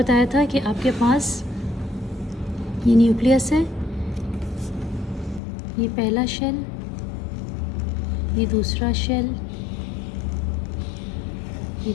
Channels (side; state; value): right; drops out; at 5.4 s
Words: था कि आपके पास ये न्यूक्लियस है, ये पहला शेल, ये दूसरा शेल, ये